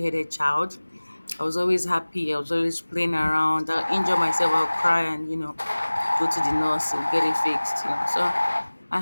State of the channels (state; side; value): inverted; both; correlation -1.00